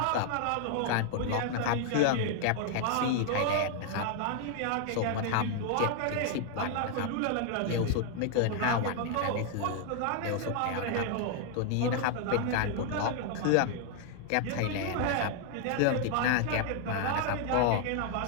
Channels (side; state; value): both; different; correlation 0.00